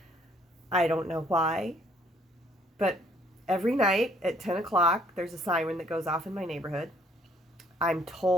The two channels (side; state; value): both; normal; correlation 0.63